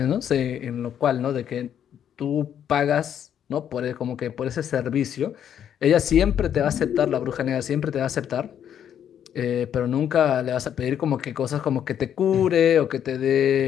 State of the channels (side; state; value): right; quieter; 9.4 dB